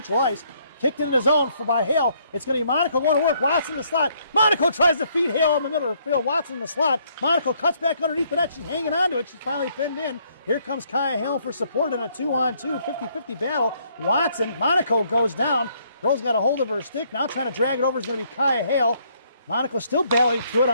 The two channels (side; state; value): both; inverted; correlation -0.68